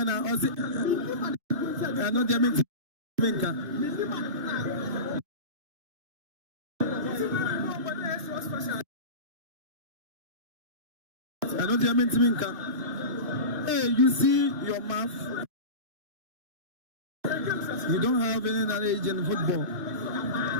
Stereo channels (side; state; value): left; late; 2.5 ms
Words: Ozi I know they make Menka I know they make Menka. Hey, you see your mouth. You don't have any knowledge in football.